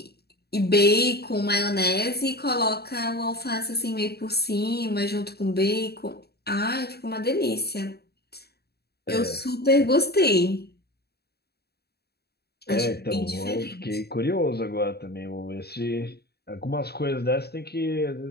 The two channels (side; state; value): right; late; 0.47 ms